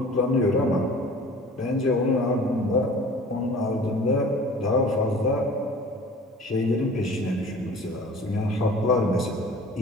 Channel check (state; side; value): normal; both; correlation 0.45